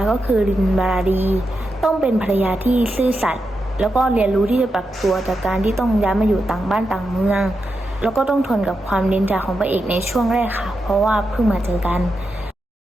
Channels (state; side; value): normal; both; correlation 0.87